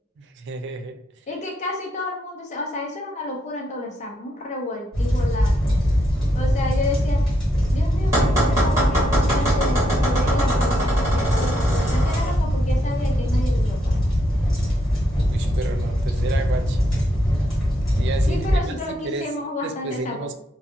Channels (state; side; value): normal; both; correlation 0.78